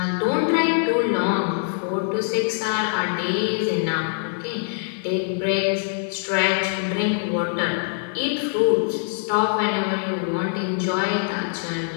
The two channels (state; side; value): silent; right; 63 dB below the other